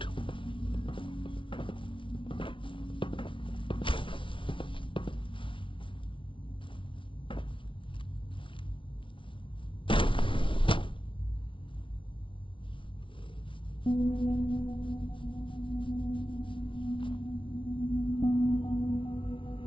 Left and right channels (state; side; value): late; right; 0.25 ms